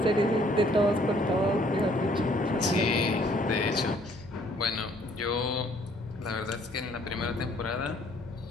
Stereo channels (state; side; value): normal; both; correlation 0.62